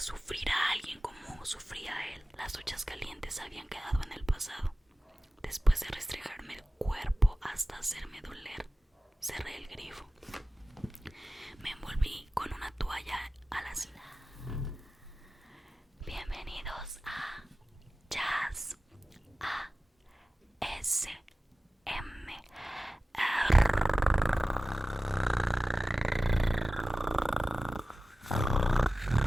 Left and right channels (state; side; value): normal; both; correlation 0.96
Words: a alguien como sufría él. Las duchas calientes habían quedado en el pasado. Después de restregarme el cuerpo hasta hacerme doler, cerré el grifo. Me envolví con una toalla a la cena. Bienvenidos a Jazz ASMR.